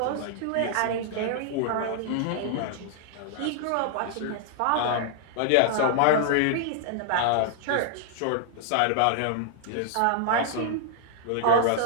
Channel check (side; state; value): both; different; correlation -0.01